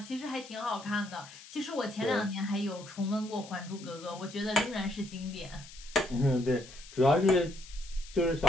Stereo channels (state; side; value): noise; left; hiss, 17 dB below the sound